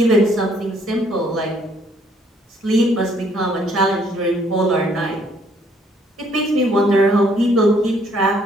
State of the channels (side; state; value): both; normal; correlation 0.65